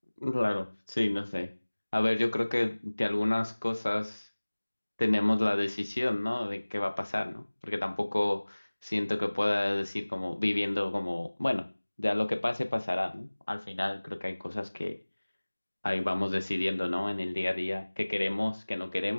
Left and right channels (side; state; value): both; inverted; correlation -1.00